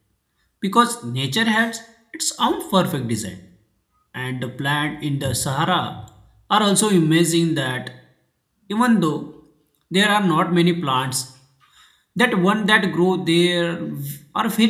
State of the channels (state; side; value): identical; both; correlation 1.00